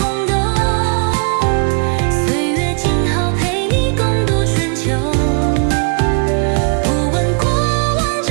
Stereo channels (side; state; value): left; quieter; 39.1 dB